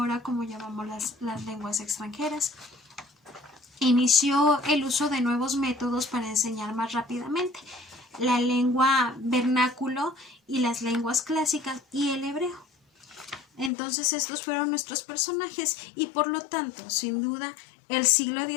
como llamamos las lenguas extranjeras, inició el uso de nuevos métodos para enseñar más rápidamente: la lengua vernáculo y las lenguas clásicas y el hebreo. Entonces estos fueron nuestros personajes, y por lo tanto, sin duda, el siglo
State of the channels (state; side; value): drops out; right; at 13.7 s